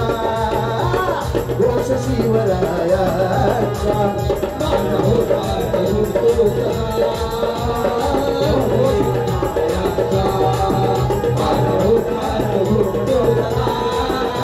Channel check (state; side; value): identical; both; correlation 1.00